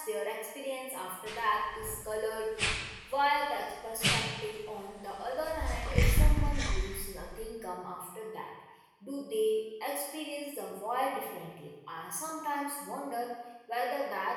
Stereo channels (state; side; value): identical; both; correlation 1.00